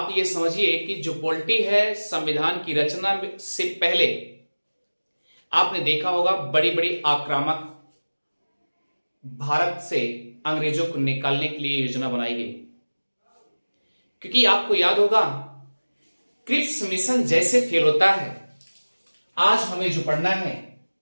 ये समझिए कि जो पॉलिटी है संविधान की रचना से पहले आपने देखा होगा बड़ी बड़ी आक्रामक भारत से अंग्रेजों को निकालने के लिए योजना बनाई गई। क्योंकि आपको याद होगा क्रिप्स मिशन जैसे फेल होता है, आज हमें जो पढ़ना है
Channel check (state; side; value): inverted; both; correlation -1.00